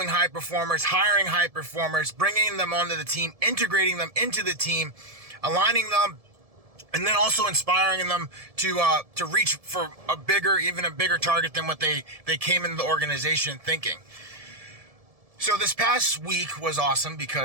high performers, hiring high performers, bringing them onto the team, integrating them into the team, aligning them, and then also inspiring them to reach for even a bigger target than what they came into the organization thinking. So this past week was awesome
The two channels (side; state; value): left; late; 1.7 ms